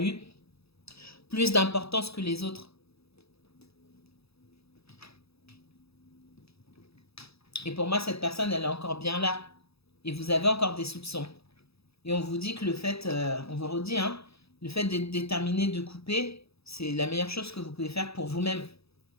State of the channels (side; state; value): right; late; 0.78 ms